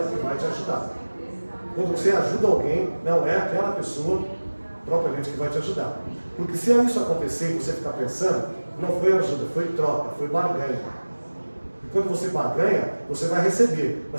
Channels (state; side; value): inverted; both; correlation -1.00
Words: que vai te ajudar. Quando você ajuda alguém, não é aquela pessoa propriamente que vai te ajudar. Porque se isso acontecer e você ficar pensando, não foi ajuda, foi troca, foi barganha. E quando você barganha, você vai receber,